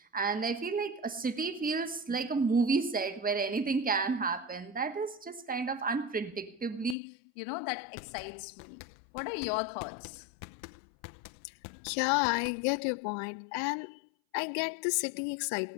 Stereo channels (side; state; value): right; drops out; at 7.0 s